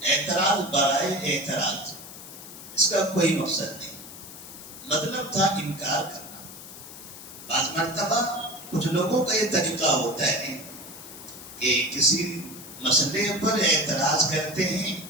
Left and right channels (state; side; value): noise; left; hiss, 14 dB below the sound